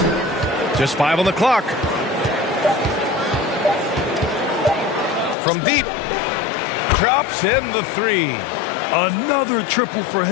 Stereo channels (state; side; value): drops out; right; at 5.4 s